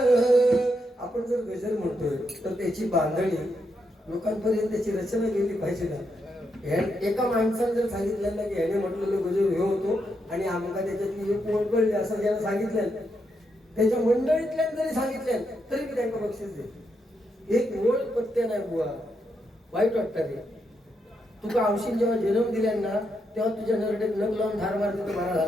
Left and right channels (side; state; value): both; normal; correlation 0.81